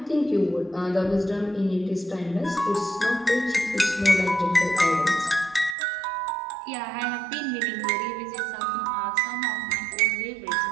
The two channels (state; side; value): drops out; left; at 5.8 s